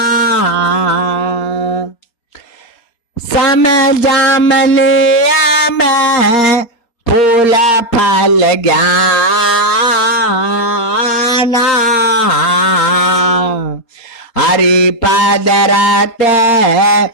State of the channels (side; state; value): right; late; 4.3 ms